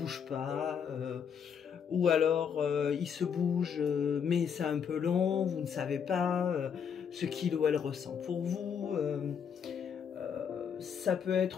pas, ou alors il se bouge, mais c'est un peu long, vous ne savez pas ce qu'il ou elle ressent pour vous. Ça peut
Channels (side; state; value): right; quieter; 7.4 dB